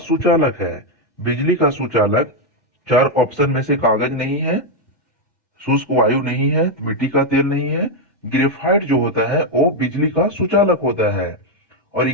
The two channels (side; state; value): both; normal; correlation 0.03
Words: है। बिजली का सुचालक 4 ऑप्शन में से कागज नहीं है, शुष्क वायु नहीं है, मिट्टी का तेल नहीं है, ग्रेफाइट जो होता है वो बिजली का सुचालक होता है। और